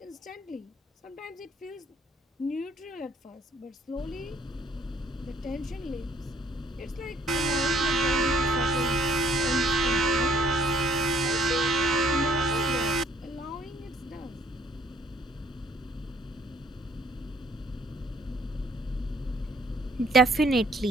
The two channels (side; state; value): both; normal; correlation 0.62